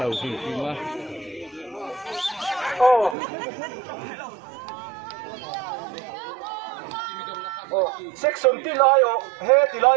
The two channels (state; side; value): drops out; left; at 3.2 s